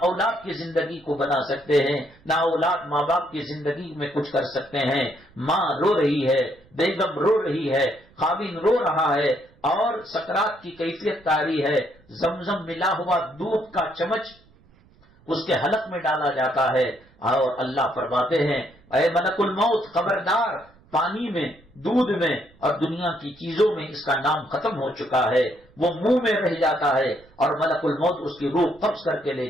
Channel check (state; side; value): noise; right; rumble, 29 dB below the sound